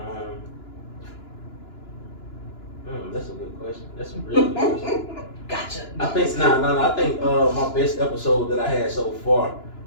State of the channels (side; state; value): right; late; 2.9 ms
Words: That's a good question. That's a really good question. Gotcha. I think I think my best episode that I had so far